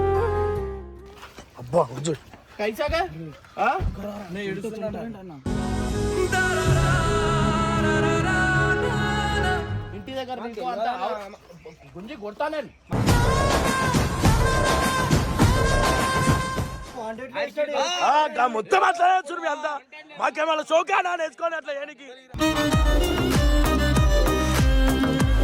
అబ్బా కైసాగా ఇంటి దగ్గర గుంజి కొడతాను. మొత్తం అట్లా చూడు అంతా మాకేమన్నా చౌకానా నేర్చుకోని అట్లా ఏనికి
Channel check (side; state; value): both; identical; correlation 1.00